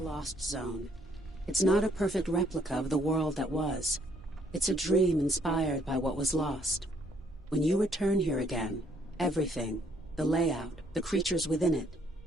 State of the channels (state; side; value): normal; both; correlation 0.67